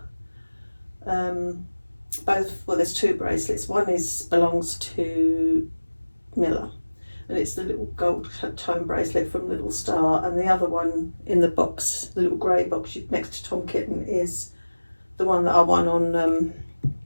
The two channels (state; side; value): inverted; both; correlation -1.00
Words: both, well, there's two bracelets. One belongs to Miller, and it's the little gold tone bracelet from Little Star, and the other one in the box, the little grey box next to Tom Kitten, is the one that I won on